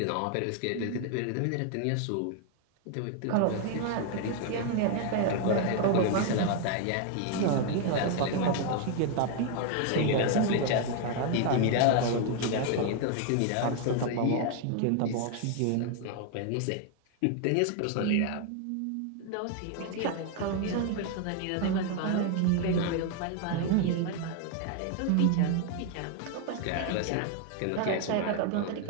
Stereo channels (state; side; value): different; both; correlation 0.01